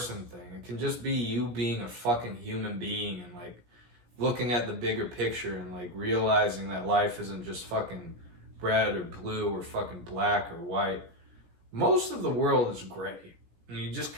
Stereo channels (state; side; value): late; left; 17 ms